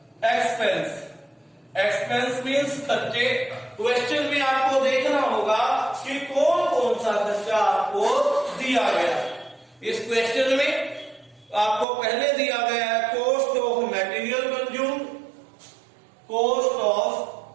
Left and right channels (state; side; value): drops out; left; at 11.9 s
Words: expense. एक्सपेंस मीन्स खर्चे। क्वेश्चन में आपको देखना होगा कि कौन कौन सा खर्चा आपको दिया गया। इस क्वेश्चन में आपको पहले दिया गया है cost of material consume, cost of